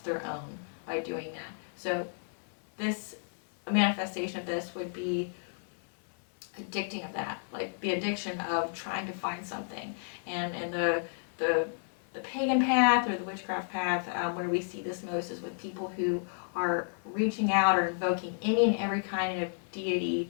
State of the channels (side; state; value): right; silent; 56 dB below the other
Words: their own by doing that. So a manifestation of this would be addicting of that, like the addiction of trying to find something. And the pagan path or the witchcraft path, where we see this most, is with people who are reaching out or invoking any and every kind of